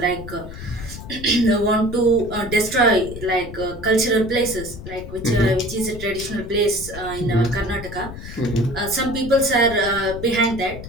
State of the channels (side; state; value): left; noise; rumble, 12 dB below the sound